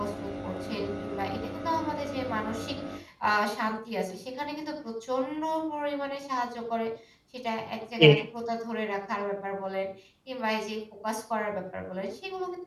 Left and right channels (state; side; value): identical; both; correlation 1.00